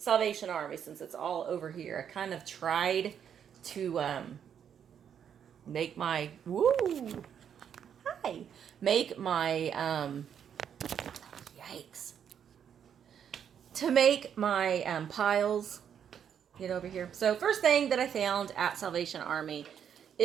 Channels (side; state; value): left; quieter; 8.4 dB